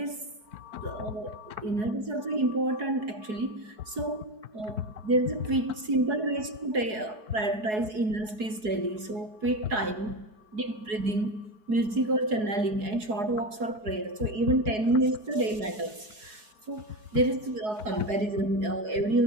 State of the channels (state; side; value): late; left; 4.7 ms